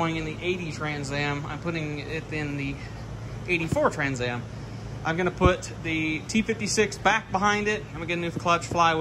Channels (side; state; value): both; identical; correlation 1.00